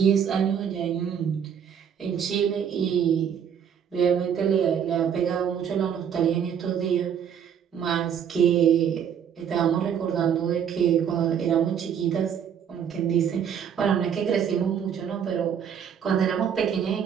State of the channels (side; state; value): left; quieter; 8.2 dB